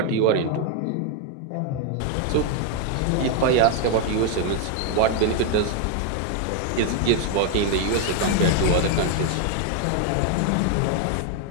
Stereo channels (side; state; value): both; different; correlation 0.01